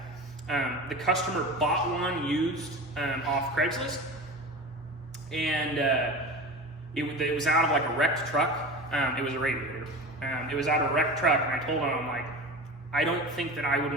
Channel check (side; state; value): both; normal; correlation 0.31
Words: The customer bought one used off Craigslist, and it was out of like a wrecked truck. It was a radiator. It was out of a wrecked truck, and I told him, I'm like, I don't think that I